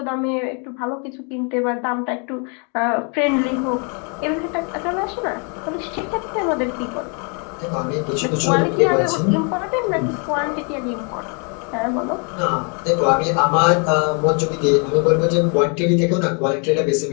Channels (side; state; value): right; quieter; 37.0 dB